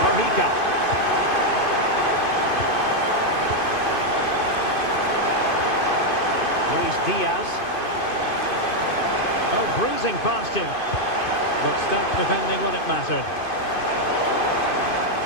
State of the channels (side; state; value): right; late; 2.5 ms